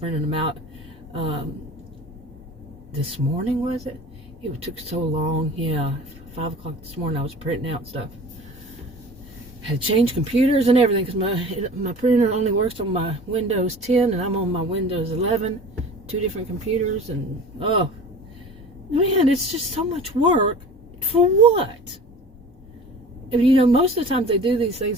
them out this morning, was it? It took so long. Yeah, 5 o'clock this morning I was printing out stuff. Had to change computers and everything because my printer only works on my Windows 10 and I'm on my Windows 11. 2 different computers, and oh man, it's just so much work for what? And you know, most of the time they do these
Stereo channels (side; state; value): both; normal; correlation 0.40